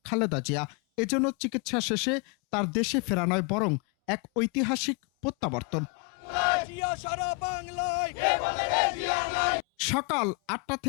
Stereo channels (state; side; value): quieter; right; 32.0 dB